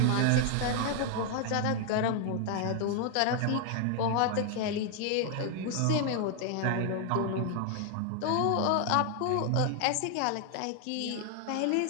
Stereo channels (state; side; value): different; both; correlation 0.00